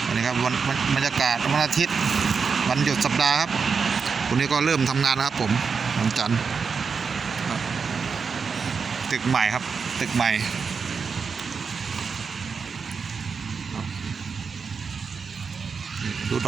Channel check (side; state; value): left; quieter; 5.5 dB